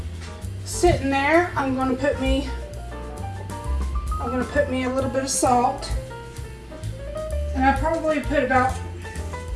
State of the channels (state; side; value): identical; both; correlation 1.00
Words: sitting there, I'm going to put me a little bit of salt. And I probably put about